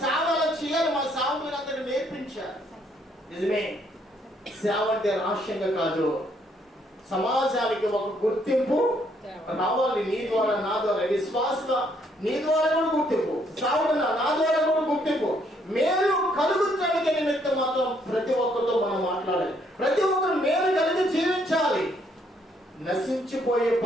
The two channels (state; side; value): normal; both; correlation 0.69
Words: సేవలు చేయాలి. మా సేవకులందరికీ నేర్పించారు. నిజమే, సేవ అంటే రహస్యంగా కాదు, సమాజానికి ఒక గుర్తింపు రావాలి. నీ ద్వారా, నా ద్వారా, విశ్వాసంగా నీ ద్వారా కూడా గుర్తింపు, సేవకుడు నా ద్వారా కూడా గుర్తింపు, మేలు కలుగుతానికి నిమిత్తం మాత్రం ప్రతి ఒక్కరితో మనం మాట్లాడాలి. ప్రతి ఒక్కరు మేలు కలిగి జీవించాలి. నశించిపోయే